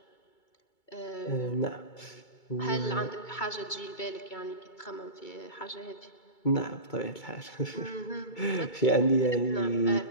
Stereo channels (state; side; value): late; right; 2.2 ms